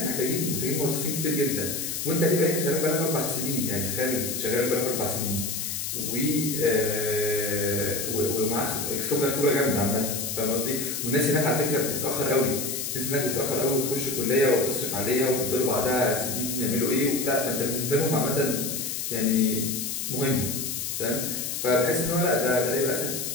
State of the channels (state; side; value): noise; left; hiss, 3 dB below the sound